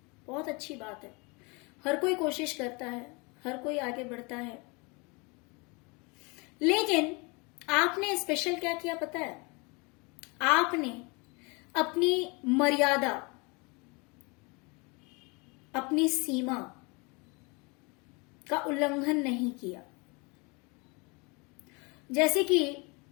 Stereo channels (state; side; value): quieter; right; 29.1 dB